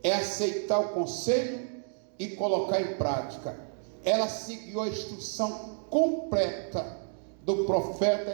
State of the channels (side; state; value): left; silent; digital silence